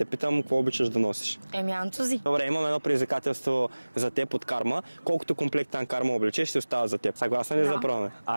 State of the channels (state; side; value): inverted; both; correlation -1.00